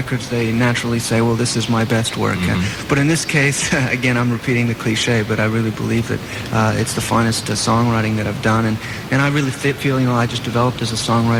they naturally say, well, this is my best work. But in this case, again, I'm repeating the cliche, but I really believe that it's the finest songwriting that I've done. And I really feel, I just developed as a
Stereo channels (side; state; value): both; identical; correlation 1.00